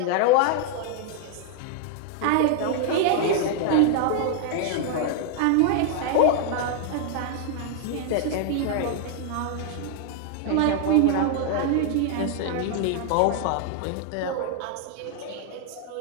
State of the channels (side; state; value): both; different; correlation 0.00